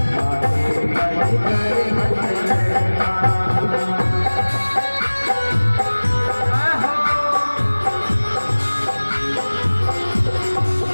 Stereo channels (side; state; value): both; inverted; correlation -1.00